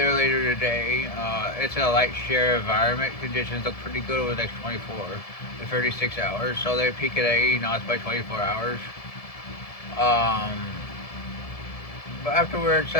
later today. It's a light shear environment. Conditions look pretty good over the next 24 to 36 hours. So they peak at 80 knots by 24 hours. But afterwards,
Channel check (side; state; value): right; late; 1.7 ms